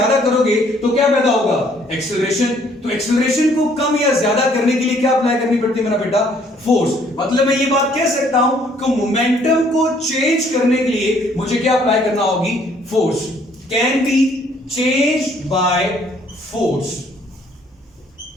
करोगे तो क्या पैदा होगा एक्सेलरेशन। तो एक्सेलरेशन को कम या ज्यादा करने के लिए क्या अप्लाई करनी पड़ती है मेरा बेटा फोर्स। मतलब मैं ये बात कह सकता हूं कि मोमेंटम को चेंज करने के लिए मुझे क्या अप्लाई करना होगी, force. Can be changed by force,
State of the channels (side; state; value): both; normal; correlation 0.63